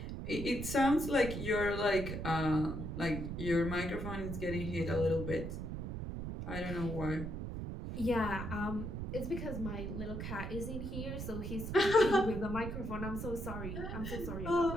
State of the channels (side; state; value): right; noise; rumble, 5 dB below the sound